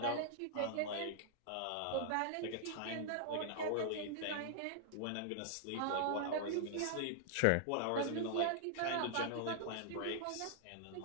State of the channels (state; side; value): different; both; correlation -0.01